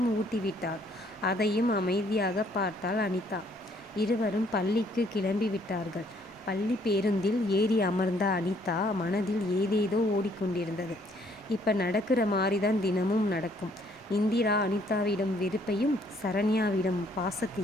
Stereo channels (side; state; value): both; normal; correlation 0.65